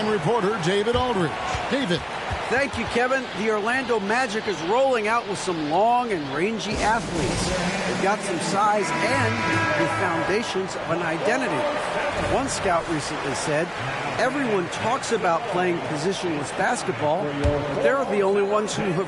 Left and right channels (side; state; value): both; identical; correlation 1.00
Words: reporter, David Aldridge. David. Thank you, Kevin. The Orlando Magic is rolling out with some long and rangy athletes. They've got some size and the foundations of an identity. One scout recently said, everyone talks about playing positionless basketball, but they're the only ones who